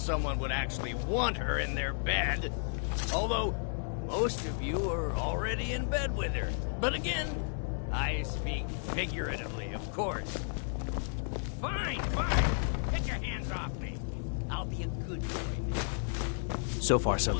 would actually want her in their bed. Although, most of you are already in bed with her. But again, I speak figuratively, of course. Fine, fine. Get your hands off me. I'll be a good boy. So far, so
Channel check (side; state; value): right; silent; 56 dB below the other